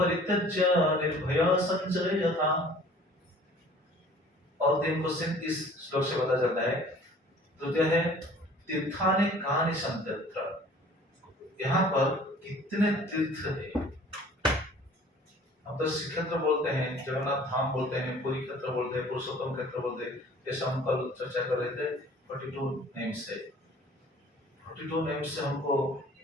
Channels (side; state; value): both; normal; correlation 0.50